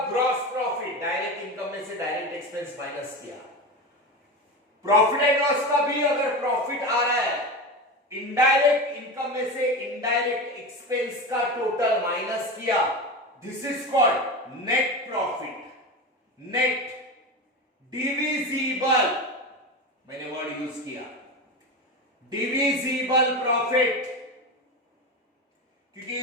ग्रॉस प्रॉफिट डायरेक्ट इनकम में से डायरेक्ट एक्सपेंस माइनस किया, प्रॉफिट एंड लॉस का भी अगर प्रॉफिट आ रहा है, इनडायरेक्ट इनकम में से इनडायरेक्ट एक्सपेंस का टोटल माइनस किया, this is called net profit, net divisible, मैंने वर्ड यूज किया डिविजिबल प्रॉफिट, क्योंकि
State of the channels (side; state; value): both; normal; correlation 0.23